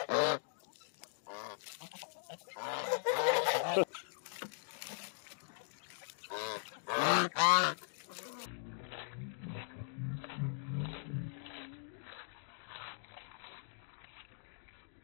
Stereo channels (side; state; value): right; silent; digital silence